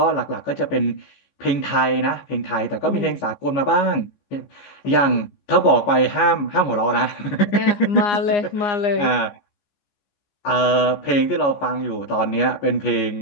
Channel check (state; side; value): late; right; 14 ms